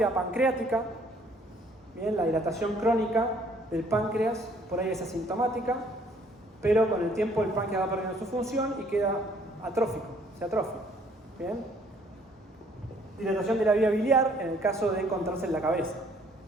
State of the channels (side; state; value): both; normal; correlation 0.61